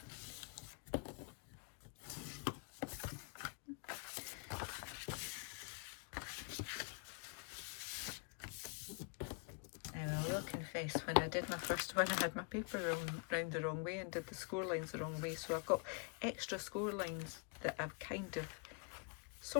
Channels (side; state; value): right; quieter; 36.5 dB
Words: Now I will confess, when I did my first one, I had my paper round the wrong way and did the score lines the wrong way, so I've got extra score lines that I've kind of